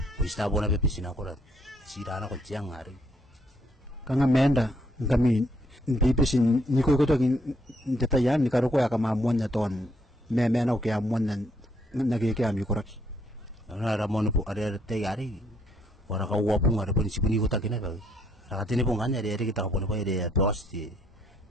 tapora bibis na korat. Sirana ko tiang hari. Kanga menda kami bibisin ni ko to detayan ni karo ko ya kama mon na ton me na ko ya mon na nagi ke ami korak. Ana ramon po ada tayari. Ora ka wapung ada pun sipuni ko takina ba. Rakatini pong kanya dari kita ko pa ide tos di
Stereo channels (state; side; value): normal; both; correlation 0.70